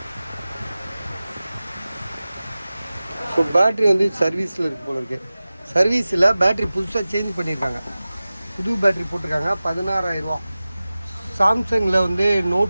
ஸோ பேட்ரி வந்து சர்வீஸில் இருக்கு போல இருக்கு. சர்வீஸில் பேட்ரி புதுசாக சேஞ்ச் பண்ணியிருக்காங்க. புது பேட்ரி போட்டிருக்காங்க. 16,000. சாம்சங்கில் வந்து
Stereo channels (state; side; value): inverted; both; correlation -0.97